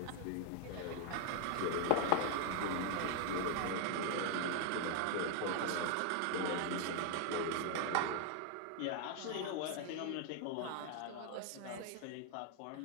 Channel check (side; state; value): both; different; correlation 0.00